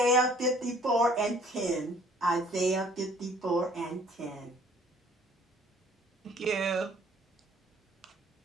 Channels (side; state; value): both; normal; correlation 0.57